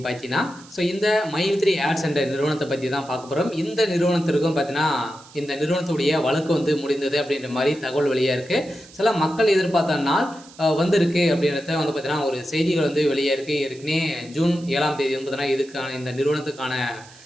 பார்த்தீங்கன்னா, இந்த மைத்ரி ஆட்ஸ் என்ற நிறுவனத்தை பற்றி தான் பார்க்க போகிறோம். இந்த நிறுவனத்திற்கும் பார்த்தீங்கன்னா, இந்த நிறுவனத்துடைய வழக்கு முடிந்தது அப்படின்ற மாதிரி தகவல் வெளியாக இருக்குது. சில மக்கள் எதிர்பார்த்த நாள் வந்திருக்கு அப்படின்றத பார்த்தீங்கன்னா, ஒரு செய்திகள் வெளியாக இருக்குது. ஏற்கனவே ஜூன் 7ஆம் தேதி பார்த்தீங்கன்னா, இதுக்கான இந்த நிறுவனத்துக்கான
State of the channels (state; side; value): noise; right; hiss, 22 dB below the sound